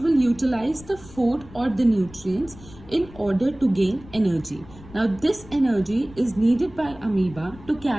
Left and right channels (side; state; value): left; noise; rumble, 20 dB below the sound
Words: will utilize the food or the nutrients in order to gain energy. Now this energy is needed by amoeba to